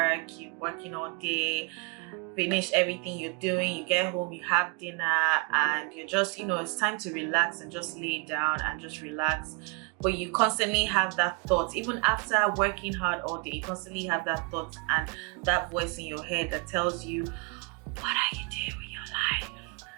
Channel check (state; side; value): quieter; left; 29.7 dB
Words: you're working all day, finish everything you're doing, you get home, you have dinner, and you're just, it's time to relax and just lay down and just relax, but you constantly have that thought. Even after working hard all day, you constantly have that thought and that voice in your head that tells you, what are you doing with your life?